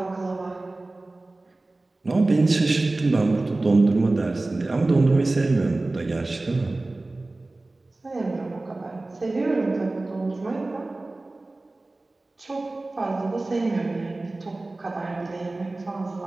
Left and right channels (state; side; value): quieter; left; 3.0 dB